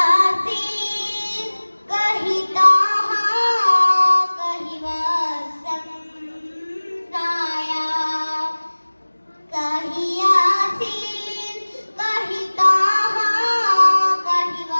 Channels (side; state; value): both; inverted; correlation -1.00